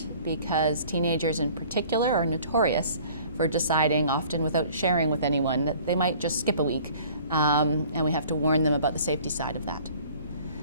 because teenagers in particular are notorious for deciding, often without sharing with anyone, that they might just skip a week, and we have to warn them about the safety side of that.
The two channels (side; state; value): both; inverted; correlation -0.51